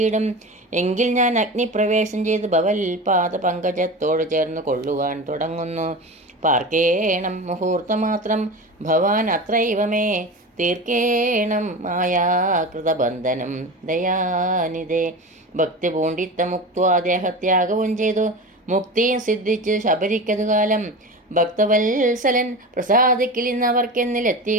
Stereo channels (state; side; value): normal; both; correlation 0.29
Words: എങ്കിൽ ഞാൻ അഗ്നിപ്രവേശം ചെയ്ത് ഭവൽ പാദ പങ്കജത്തോട് ചേർന്ന് കൊള്ളുവാൻ തുടങ്ങുന്നു. പാർക്കേണം മുഹൂർത്തമാത്രം ഭവാൻ അത്രൈവമേ തീർക്കേണം മായാകൃതബന്ധനം ദയാനിധേ. ഭക്തി പൂണ്ടിത്ത മുക്ത്വാ ദേഹത്യാഗവും ചെയ്തു മുക്തിയും സിദ്ധിച്ച് ശബരിക്കതു കാലം. ഭക്തവത്സലൻ